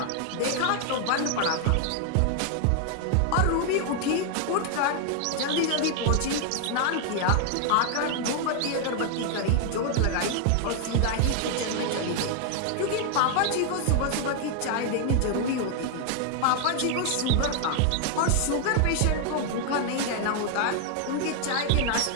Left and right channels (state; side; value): different; both; correlation 0.00